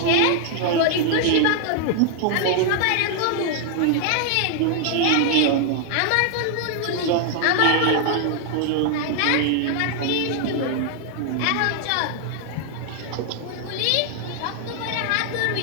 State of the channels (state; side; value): different; both; correlation 0.00